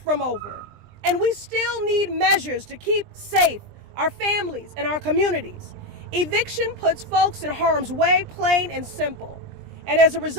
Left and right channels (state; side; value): late; left; 20 ms